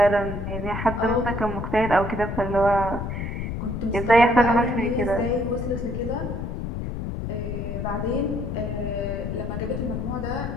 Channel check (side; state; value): left; noise; rumble, 4 dB below the sound